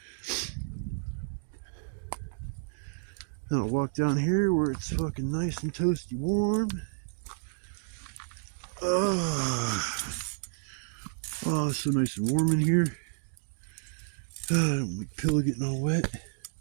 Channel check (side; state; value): left; silent; digital silence